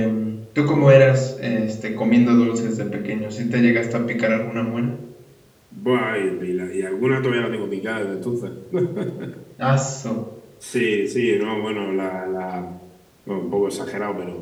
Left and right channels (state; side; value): identical; both; correlation 1.00